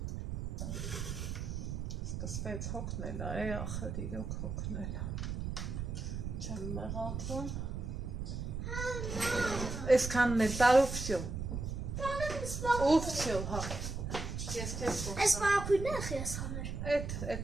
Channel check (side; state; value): right; noise; rumble, 4 dB below the sound